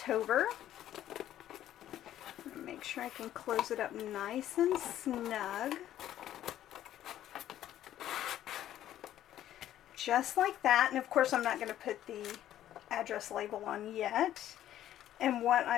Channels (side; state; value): right; quieter; 12.2 dB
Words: Make sure I can close it up nice and snug. Just like that. And of course I'm not going to put the address label on yet. And what